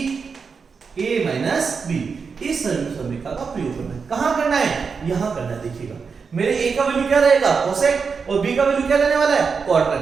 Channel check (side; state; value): left; quieter; 5.4 dB